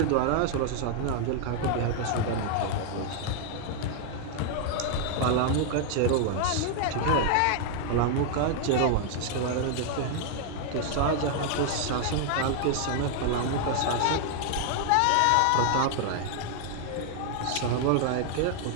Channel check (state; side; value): different; both; correlation 0.00